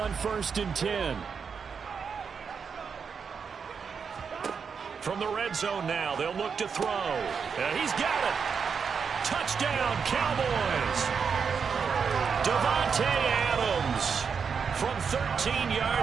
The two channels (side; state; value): left; quieter; 6.1 dB